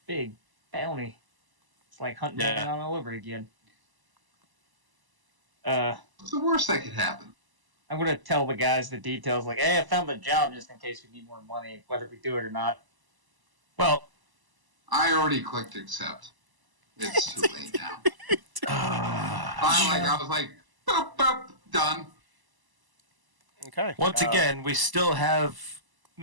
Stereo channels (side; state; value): left; late; 1.0 ms